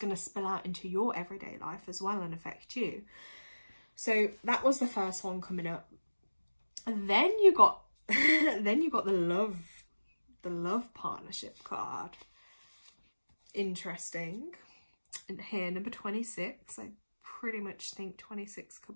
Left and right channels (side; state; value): both; inverted; correlation -1.00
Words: to spill out into your everyday life as well and affect you. So that was the first one coming up. And then you got the love partnership card. Interesting. And here, number 26. I pretty much think 26 could